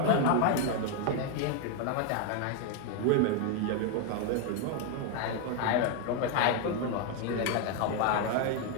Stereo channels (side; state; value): both; different; correlation 0.01